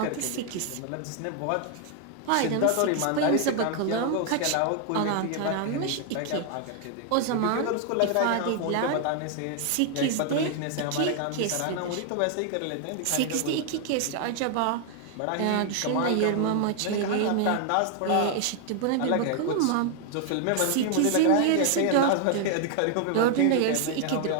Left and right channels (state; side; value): different; both; correlation 0.00